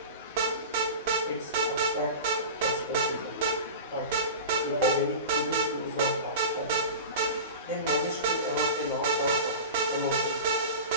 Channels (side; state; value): both; inverted; correlation -0.30